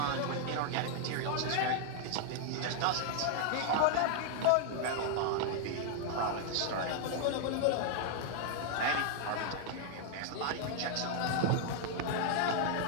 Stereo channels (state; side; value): different; both; correlation 0.00